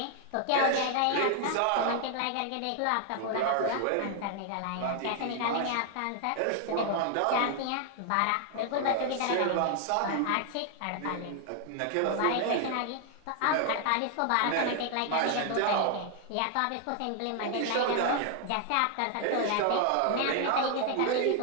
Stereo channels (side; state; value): both; different; correlation 0.00